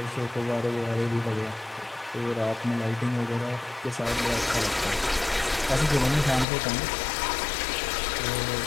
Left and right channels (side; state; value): right; drops out; at 6.5 s